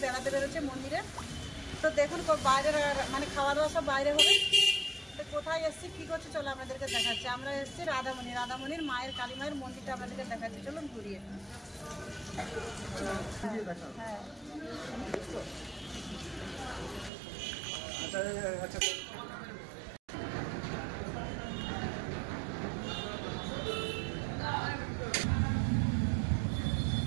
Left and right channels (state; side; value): drops out; left; at 17.1 s